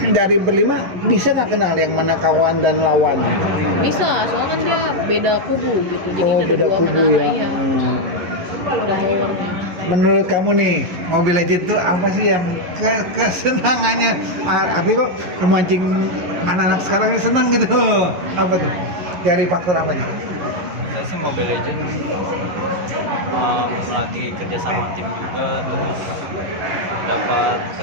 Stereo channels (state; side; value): late; left; 11 ms